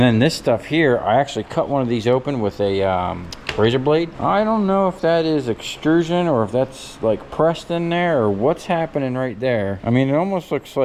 then this stuff here, I actually cut one of these open with a razor blade. I don't know if that is extrusion or if that's like pressed in there or what's happening right there. I mean, it almost looks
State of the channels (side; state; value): both; identical; correlation 1.00